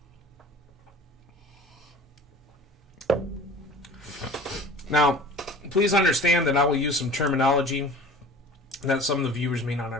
Now, please understand that I will use some terminology that some of the viewers may not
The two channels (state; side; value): normal; both; correlation 0.42